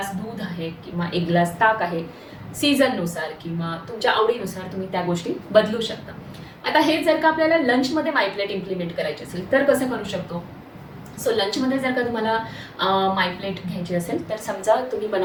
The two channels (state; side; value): identical; both; correlation 1.00